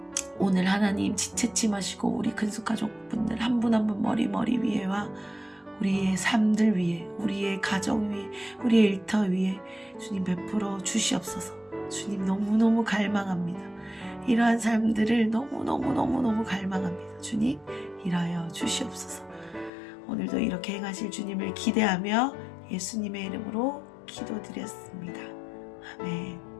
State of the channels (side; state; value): right; drops out; at 19.7 s